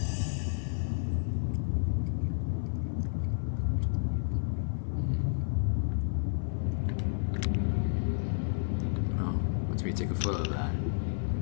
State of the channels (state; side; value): silent; right; 57 dB below the other